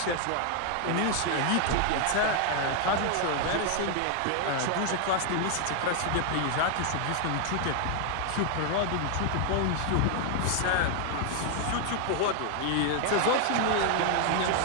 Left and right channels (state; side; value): different; both; correlation 0.00